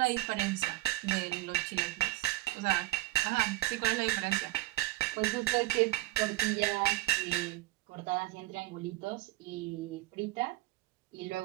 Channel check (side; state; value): left; quieter; 17.8 dB